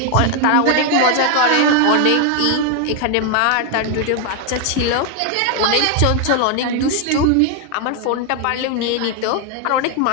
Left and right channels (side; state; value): both; different; correlation 0.01